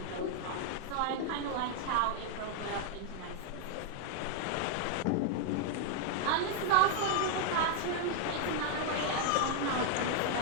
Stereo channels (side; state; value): both; different; correlation 0.00